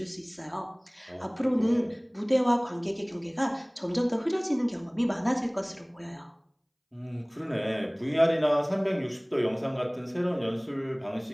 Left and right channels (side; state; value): both; identical; correlation 1.00